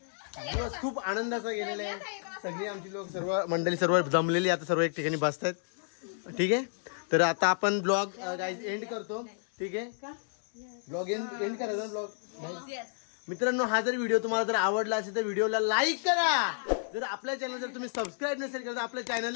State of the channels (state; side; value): silent; right; digital silence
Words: दिवस खूप आनंदाचा गेलेला आहे. सगळी आमची लोक सर्व मंडळी सर्व जमलेली आता सर्व एक ठिकाणी बसतात. ठीक आहे तर आता आपण ब्लॉग गाईज एंड करतो. ठीक आहे ब्लॉग एंड करायचा ब्लॉग. मित्रांनो हा जर व्हिडिओ तुम्हाला जर आवडला असेल तर व्हिडिओला लाईक करा. जर आपल्या चॅनल जर तुम्ही सबस्क्राईब नसेल केलं तर आपल्या